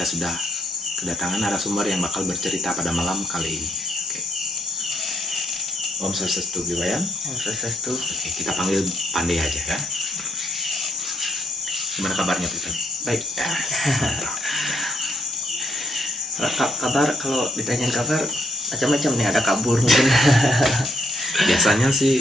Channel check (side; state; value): both; normal; correlation 0.72